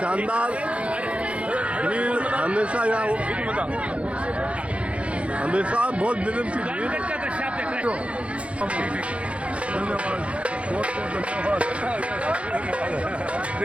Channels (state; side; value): late; left; 0.062 ms